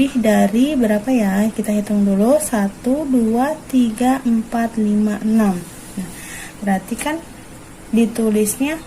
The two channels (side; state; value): both; identical; correlation 1.00